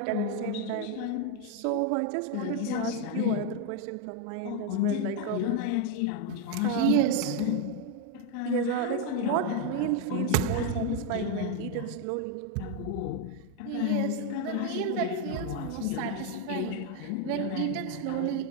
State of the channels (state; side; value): different; both; correlation 0.01